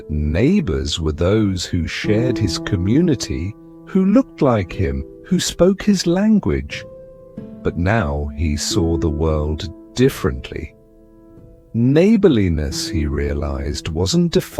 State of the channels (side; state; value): both; identical; correlation 1.00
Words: neighbors were those who shared his community, who looked like him, who spoke his language. But now he saw the world differently. Neighborliness, he realized, wasn't